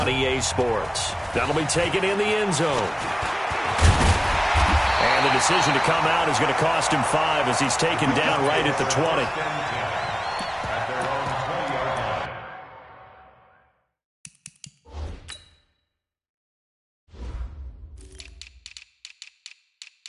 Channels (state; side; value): identical; both; correlation 1.00